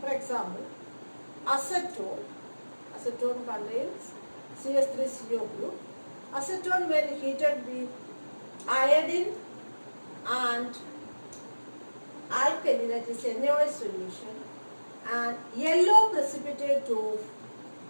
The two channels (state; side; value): inverted; both; correlation -1.00